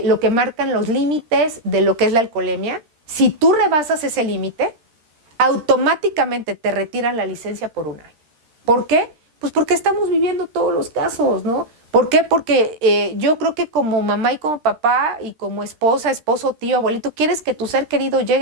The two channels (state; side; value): late; left; 13 ms